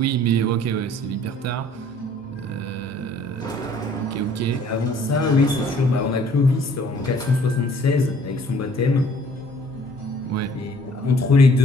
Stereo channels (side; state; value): both; normal; correlation 0.57